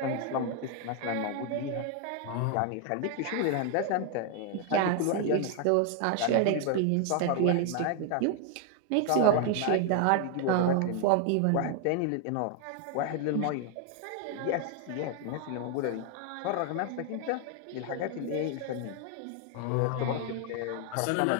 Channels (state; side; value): different; both; correlation 0.00